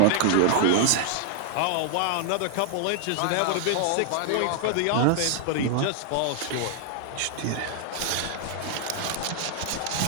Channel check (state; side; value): different; both; correlation 0.00